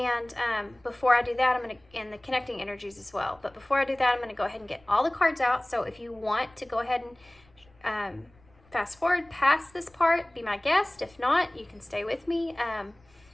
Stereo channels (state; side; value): noise; left; rumble, 30 dB below the sound